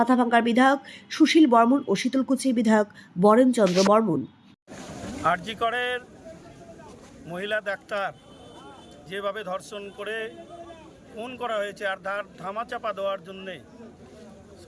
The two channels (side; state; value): both; identical; correlation 1.00